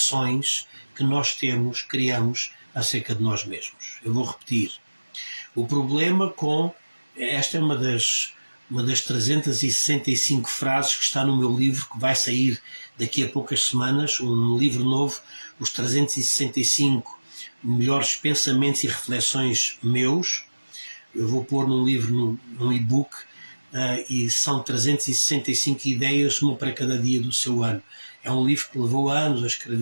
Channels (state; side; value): inverted; both; correlation -1.00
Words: que nós criamos acerca de nós mesmos. Eu vou repetir. O problema esta é uma das 365 frases que está no meu livro, que vai sair daqui a poucas semanas, um livro novo, os 365 melhores pensamentos e reflexões meus. Eu vou pôr num livro, num e-book, e são 365 ideias, uma para cada dia do seu ano. É um livro que levou anos a